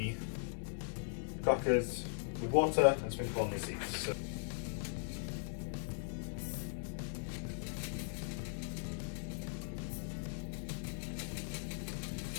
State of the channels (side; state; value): right; silent; digital silence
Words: crackers with water and sprinkle on the seeds. So